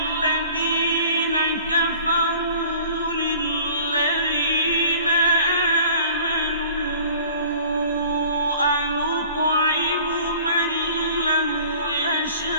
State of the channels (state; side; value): inverted; both; correlation -0.48